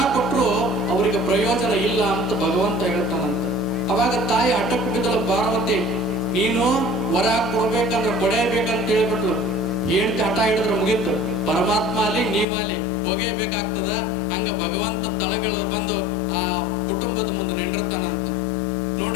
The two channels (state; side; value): drops out; right; at 12.5 s